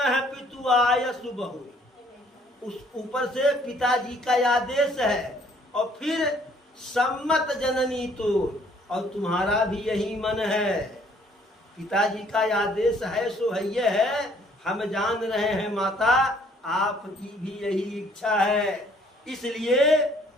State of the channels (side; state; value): both; normal; correlation 0.61